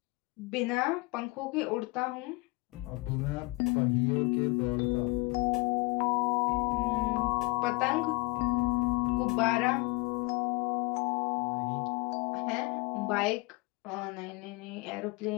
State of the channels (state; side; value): quieter; right; 25.2 dB